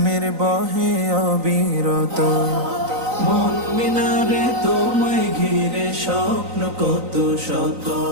বহে অবিরত। মন মিনারে তোমায় ঘিরে স্বপ্ন কত শত,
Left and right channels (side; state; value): left; late; 3.9 ms